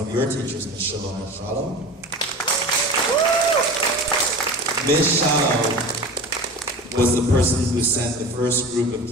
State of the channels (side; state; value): both; normal; correlation 0.33